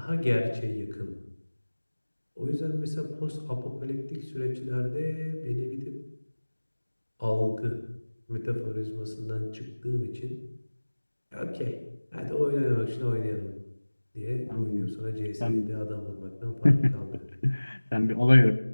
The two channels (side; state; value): both; inverted; correlation -1.00